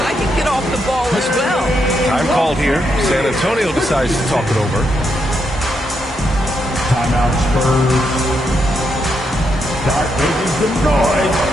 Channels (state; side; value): normal; both; correlation 0.80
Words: can get off the ball as well. Time called here. San Antonio decides to talk it over. Timeout Spurs. Start making some noise